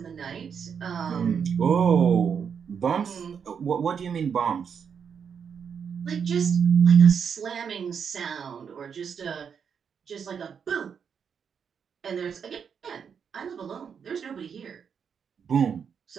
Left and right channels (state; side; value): quieter; left; 7.0 dB